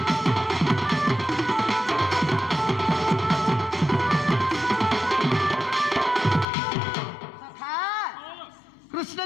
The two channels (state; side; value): drops out; right; at 6.5 s